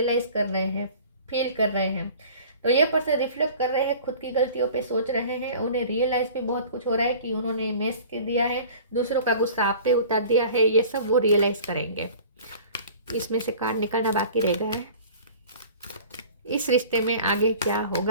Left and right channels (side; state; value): both; inverted; correlation -0.44